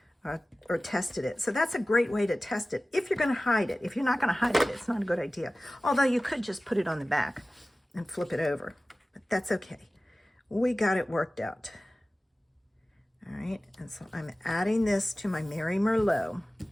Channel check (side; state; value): both; normal; correlation 0.97